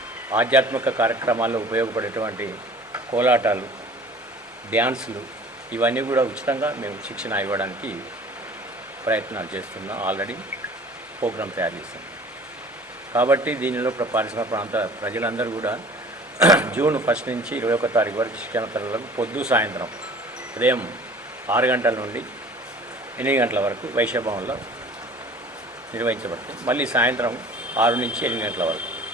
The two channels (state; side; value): normal; both; correlation 0.46